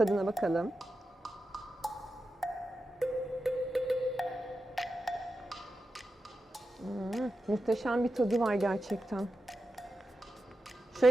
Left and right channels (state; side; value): normal; both; correlation 0.90